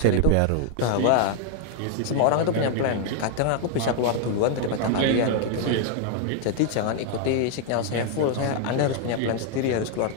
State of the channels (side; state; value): both; different; correlation 0.00